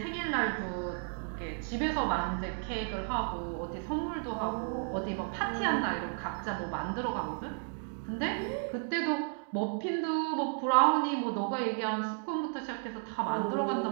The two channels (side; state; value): left; silent; 56 dB below the other